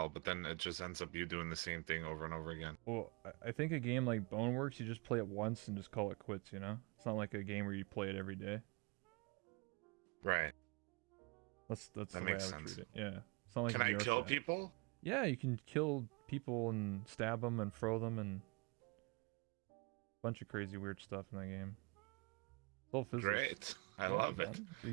but then it just ends up you doing the same thing over and over again. Well, I think a game like Boneworks, you just play it once and just call it quits. You know, it's not like a game where you play it every day. Right. That's the way I would treat it. Yeah. It's not like Can I VR kill Chat. people? Yeah, you can kill people and stab them and throw them and a bunch of crazy weird stuff in that game. It's all physics. Great. I love it.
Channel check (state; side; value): quieter; left; 29.6 dB